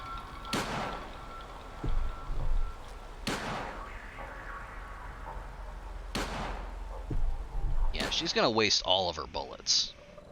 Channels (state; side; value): identical; both; correlation 1.00